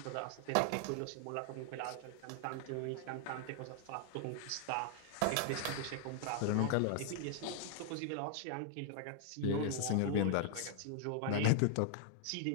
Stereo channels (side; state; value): both; different; correlation 0.00